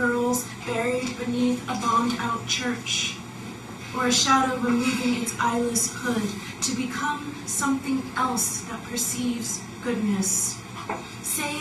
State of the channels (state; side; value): identical; both; correlation 1.00